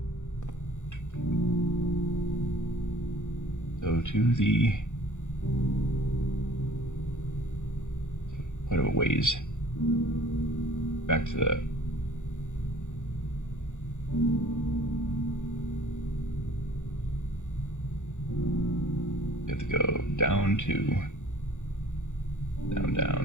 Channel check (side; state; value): right; late; 0.85 ms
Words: So to the quite a ways back to the we have to go down to